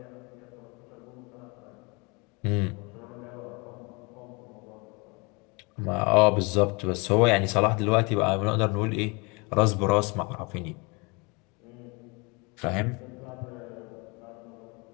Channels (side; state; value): right; quieter; 28.7 dB